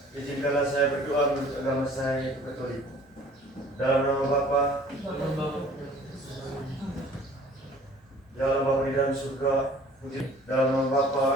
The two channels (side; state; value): both; normal; correlation 0.51